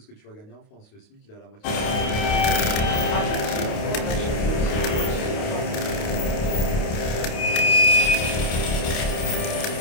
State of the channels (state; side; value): late; right; 28 ms